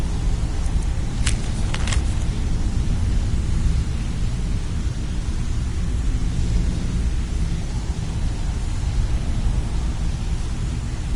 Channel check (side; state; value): both; identical; correlation 1.00